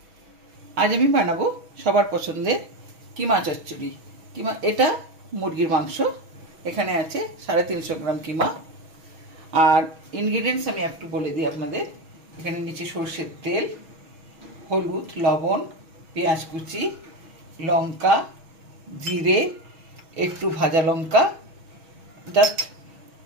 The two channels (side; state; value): left; late; 6.2 ms